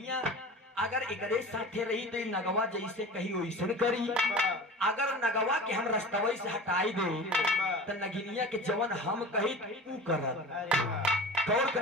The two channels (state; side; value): normal; both; correlation 0.36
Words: अगर एकरे साथे रही तो नगवा जैसे कही वैसे करी, अगर नगवा के हम रस्तवई से हटाई दे तो नगिनिया के जवन हम कही तू कर। गौर